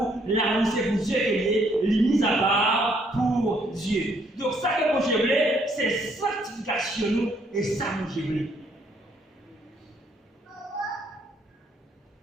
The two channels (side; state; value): both; normal; correlation 0.68